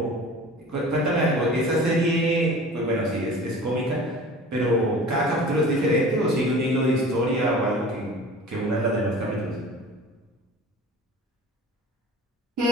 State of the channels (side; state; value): both; normal; correlation 0.41